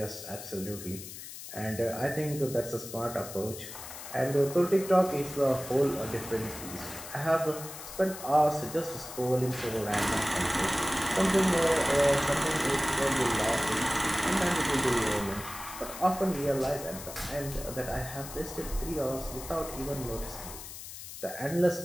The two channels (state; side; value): noise; left; hiss, 12 dB below the sound